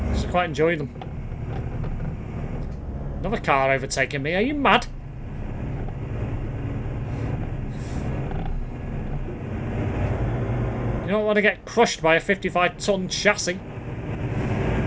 quite enjoy them. Another car overtaking me, are you mad? You don't want to get crushed by a 55-ton chassis.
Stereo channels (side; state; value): both; identical; correlation 1.00